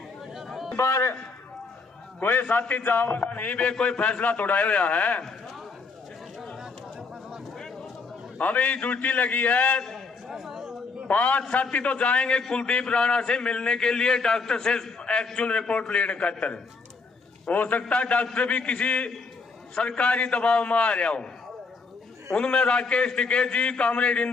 पर कोई साथी जाओगा नहीं भी, कोई फैसला तोड़ा हुआ है। अभी ड्यूटी लगी है 5 साथी तो जाएंगे कुलदीप राणा से मिलने के लिए, डॉक्टर से एक्चुअल रिपोर्ट लेने खातर। हो सकता है डॉक्टर भी किसी सरकारी दबाव में आ रहा हो। उनमें राकेश टिकेत जी, कामरेड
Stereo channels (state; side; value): quieter; right; 4.4 dB